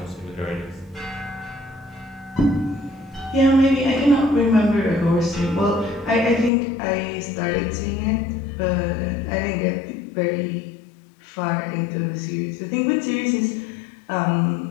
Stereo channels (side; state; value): right; drops out; at 6.5 s